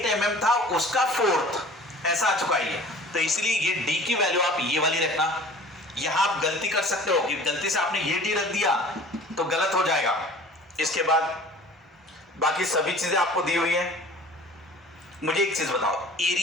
mm था उसका 4th ऐसा आ चुका है। तो इसलिए ये d की वैल्यू आप ये वाली रखना। यहां आप गलती कर सकते हो कि गलती से आपने ये d रख दिया तो गलत हो जाएगा। इसके बाद बाकी सभी चीजें आपको दी हुई है। मुझे एक चीज बताओ,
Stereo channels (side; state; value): both; normal; correlation 0.46